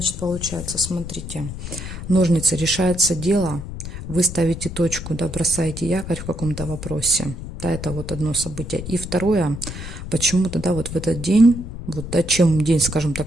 получается, смотрите, ножницы, решается дело, вы ставите точку, да, бросаете якорь в каком-то вопросе. Да, это вот одно событие. И второе, почему-то, да, вот в этот день, вот, да, чем день, скажем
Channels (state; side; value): noise; left; rumble, 9 dB below the sound